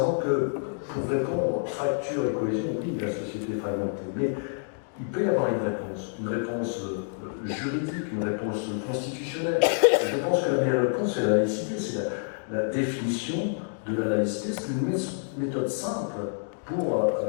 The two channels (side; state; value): right; silent; digital silence